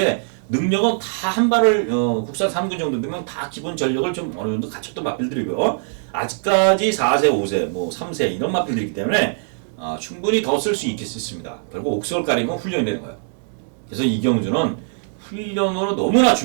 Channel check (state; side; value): silent; left; 65 dB below the other